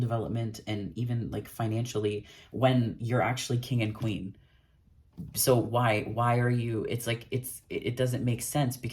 and even like financially, when you're actually king and queen. So why are you, it's like it doesn't make sense,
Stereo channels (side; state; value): both; identical; correlation 1.00